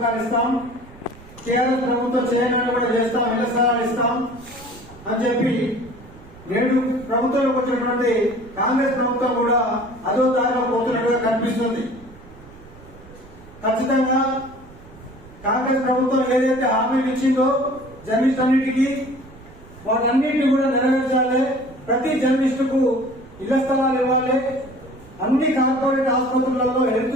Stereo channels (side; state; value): right; noise; rumble, 21 dB below the sound